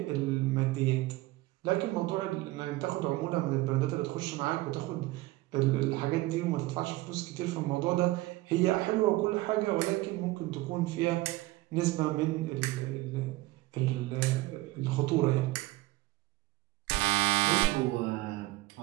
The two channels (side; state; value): left; quieter; 19.0 dB